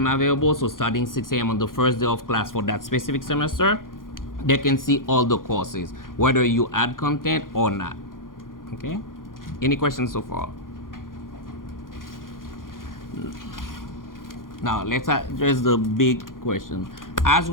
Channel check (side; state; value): right; late; 0.90 ms